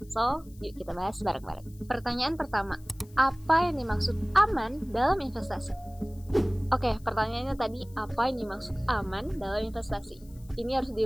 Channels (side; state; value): left; noise; hiss, 27 dB below the sound